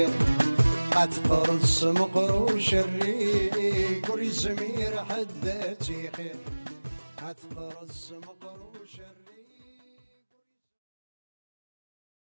أتقرص مقروش الريق وريزمير حداتي خير أتقرص مقروش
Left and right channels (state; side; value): inverted; both; correlation -1.00